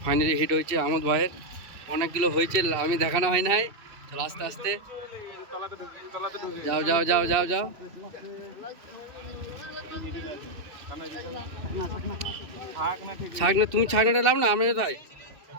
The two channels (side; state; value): left; late; 2.7 ms